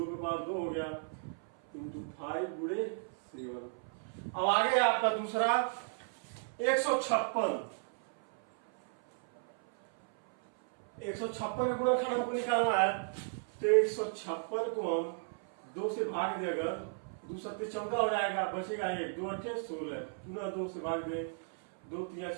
पे पावर 2 हो गया, इंटू 5 गुणे 7। अब आगे आपका दूसरा 156 का गुणनखंड हमको निकालना है। तो 156 को हम 2 से भाग दे, अगर 2 सत्ते 14 हो जाएगा, बचेगा 1, 2 8 16, पुनः 2 से भाग दे, 2 3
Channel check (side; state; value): left; silent; 55 dB below the other